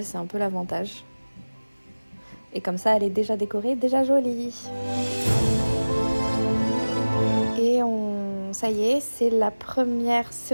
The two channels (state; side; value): inverted; both; correlation -1.00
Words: c'est un peu l'avantage. Et comme ça, elle est déjà décorée, déjà jolie. Et ça y est, c'est la première